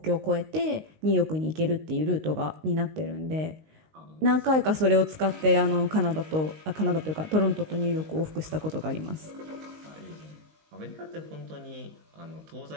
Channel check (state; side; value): late; left; 19 ms